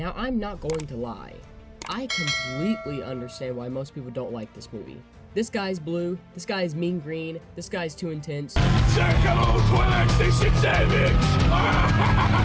I'm not going to lie. I completely understand why most people don't like this movie. This guy's blue, this guy's mean green, this guy's too intense.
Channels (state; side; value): identical; both; correlation 1.00